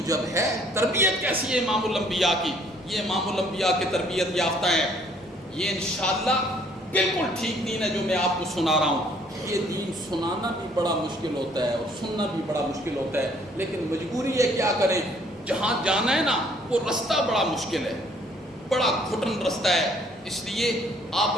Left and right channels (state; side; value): normal; both; correlation 0.61